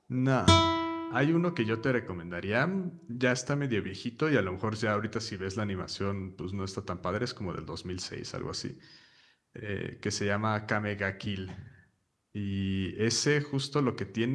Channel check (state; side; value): identical; both; correlation 1.00